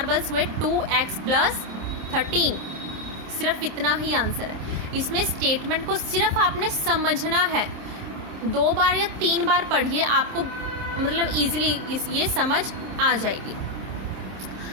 हुए 2x प्लस 13। सिर्फ इतना ही आंसर है। इसमें स्टेटमेंट को सिर्फ आपने समझना है, 2 बार या 3 बार पढ़िए, आपको मतलब इजीली ये समझ आ जाएगी।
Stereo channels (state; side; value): late; left; 27 ms